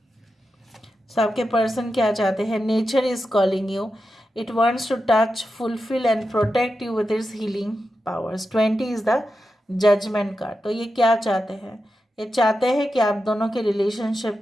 सो आपके पर्सन क्या चाहते हैं? Nature is calling you, it wants to touch, fulfil and protect you with its healing powers. 20 is the judgement card. तो ये क्या चाहते हैं? ये चाहते हैं कि आप दोनों के रिलेशनशिप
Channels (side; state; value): both; normal; correlation 0.90